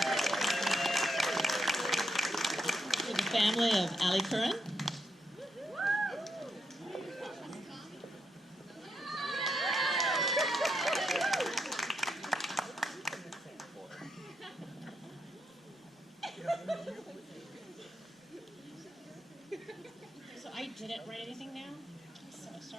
To the family of Ali Curran. So I didn't write anything down, so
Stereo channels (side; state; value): both; normal; correlation 0.81